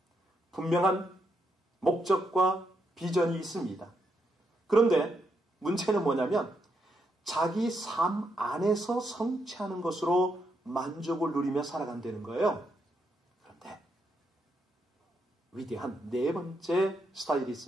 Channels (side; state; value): both; normal; correlation 0.79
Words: 분명한 목적과 비전이 있습니다. 그런데 문제는 뭐냐면 자기 삶 안에서 성취하는 것으로 만족을 누리며 살아간다는 거예요. 그런데 위대한 네 번째 스타일이